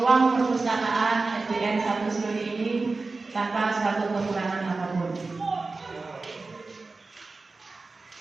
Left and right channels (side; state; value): left; quieter; 3.7 dB